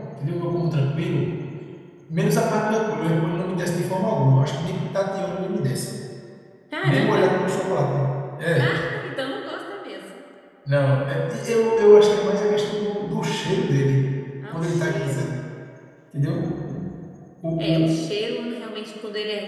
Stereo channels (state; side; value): identical; both; correlation 1.00